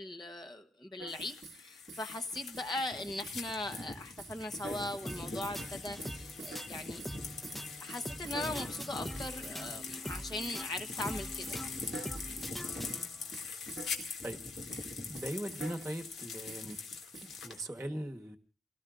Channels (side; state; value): both; normal; correlation 0.74